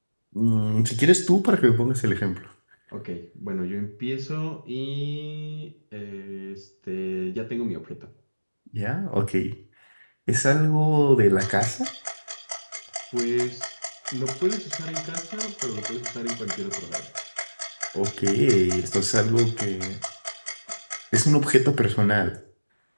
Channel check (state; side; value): inverted; both; correlation -1.00